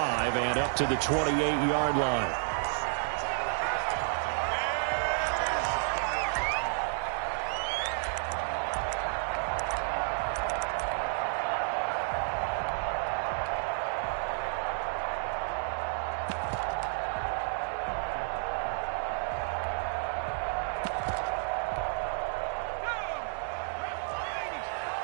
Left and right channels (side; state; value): left; silent; digital silence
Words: and up to the 28-yard line.